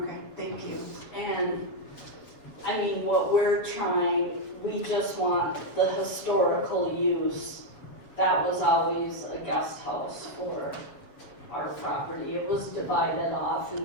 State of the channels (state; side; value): late; right; 7.2 ms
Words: thank you. And, I mean, what we're trying, we just want the historical use. That was always a guest house for our property. It was divided off in